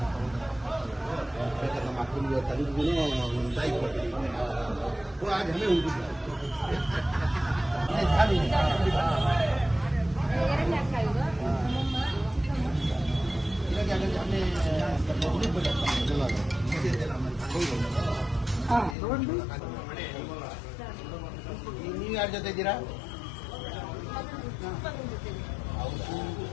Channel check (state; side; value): drops out; right; at 18.9 s